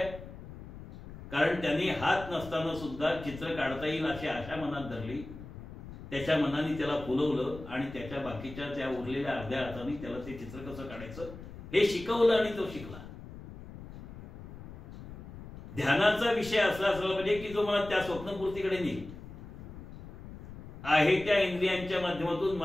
कारण त्यांनी हात नसताना सुद्धा चित्र काढता येईल अशी आशा मनात धरली. त्याच्या मनाने त्याला फुलवलं आणि त्याच्या बाकीच्या त्या उरलेल्या अर्ध्या हाताने त्याला ते चित्र कसं काढायचं हे शिकवलं आणि तो शिकला. ध्यानाचा विषय असला असला पाहिजे की जो मला त्या स्वप्नपूर्तीकडे नेईल. आहे त्या इंद्रियांच्या माध्यमातून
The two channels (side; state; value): left; noise; rumble, 14 dB below the sound